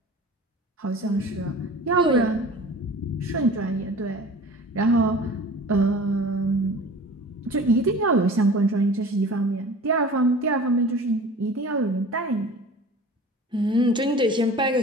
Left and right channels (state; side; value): normal; both; correlation 0.41